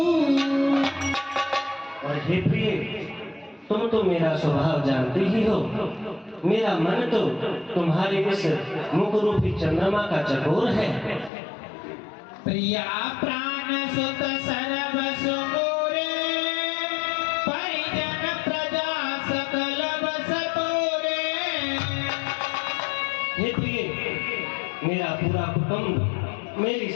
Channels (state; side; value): drops out; right; at 11.3 s